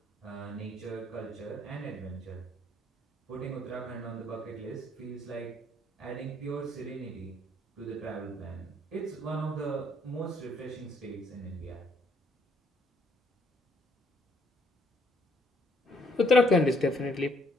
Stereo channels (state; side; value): normal; both; correlation 0.66